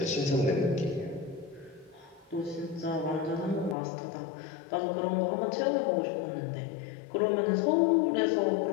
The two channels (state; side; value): drops out; right; at 3.8 s